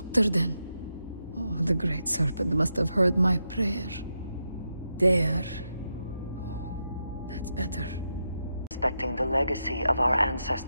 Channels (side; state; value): both; inverted; correlation -0.86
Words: then? Oh, the Great Serpent must have heard my prayer. There. Oh, that's better. Respecting the legacy of our